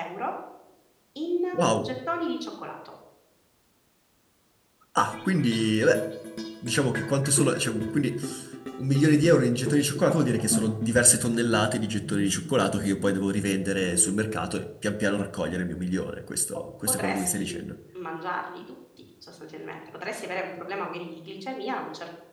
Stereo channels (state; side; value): identical; both; correlation 1.00